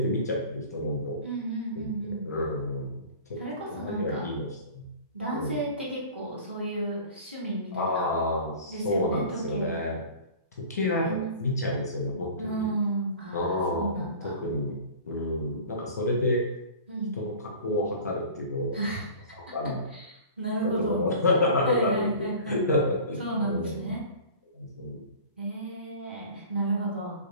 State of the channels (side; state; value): both; inverted; correlation -0.41